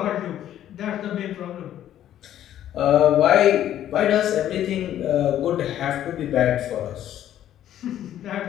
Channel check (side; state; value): right; quieter; 11.6 dB